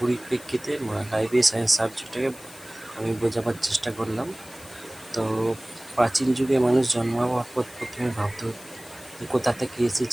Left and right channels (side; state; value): left; noise; hiss, 19 dB below the sound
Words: লাইব্রেরি সায়েন্স সাবজেক্টটাকে আমি বোঝাবার চেষ্টা করলাম। তো প্রাচীন যুগে মানুষ জন্মাবার পর প্রথমে ভাবত কোথা থেকে